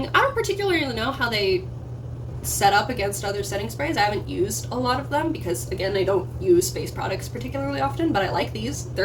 I don't particularly know how they set up against other setting sprays. I haven't used a lot of them because, again, I don't use face products particularly often, but I like these.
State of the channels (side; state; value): both; identical; correlation 1.00